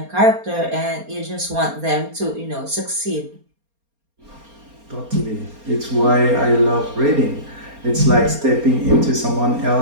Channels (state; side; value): late; left; 4.3 ms